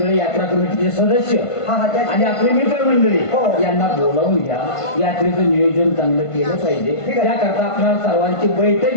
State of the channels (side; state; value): right; late; 1.5 ms